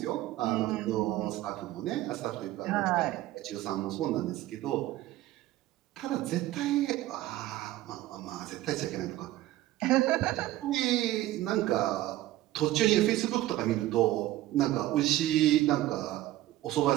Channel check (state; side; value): quieter; left; 15.4 dB